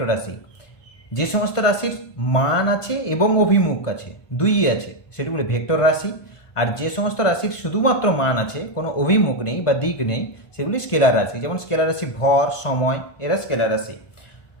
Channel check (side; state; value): right; late; 1.2 ms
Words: রাশি। যে সমস্ত রাশির মান আছে এবং অভিমুখ আছে, দুইই আছে, সেগুলি ভেক্টর রাশি। আর যে সমস্ত রাশির শুধুমাত্র মান আছে, কোনো অভিমুখ নেই বা দিক নেই, সেগুলি স্কেলার রাশি। যেমন স্কেলার রাশি ভর, সময়, এরা স্কেলার রাশি।